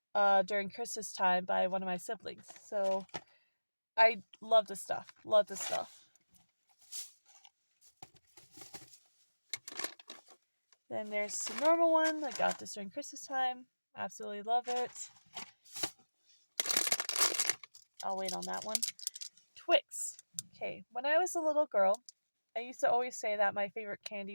during Christmas time by one of my siblings. So I love this stuff. Love this stuff. Then there's the normal one. I got this during Christmas time. Absolutely love it. I'll wait on that one. Twix. Okay, when I was a little girl, I used to always say that my favorite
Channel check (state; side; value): inverted; both; correlation -1.00